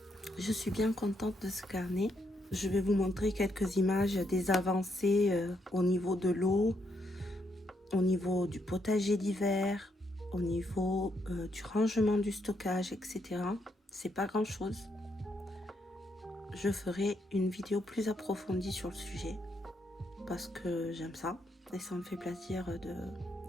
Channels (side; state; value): both; normal; correlation 0.77